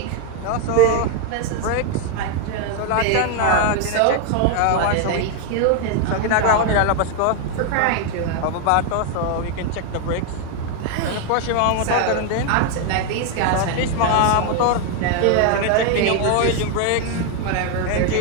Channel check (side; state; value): both; different; correlation 0.01